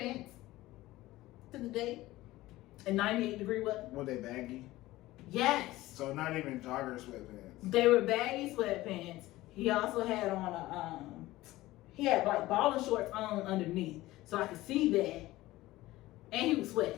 to the date and 98-degree weather. Were they baggy? Yes. So not even jogger sweatpants. They were baggy sweatpants. He also had on he had like balling shorts on underneath, so I could see that. And he was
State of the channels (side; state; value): right; quieter; 17.5 dB